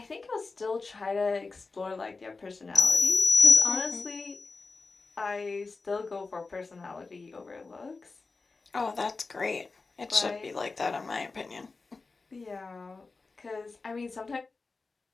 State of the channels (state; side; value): quieter; right; 4.0 dB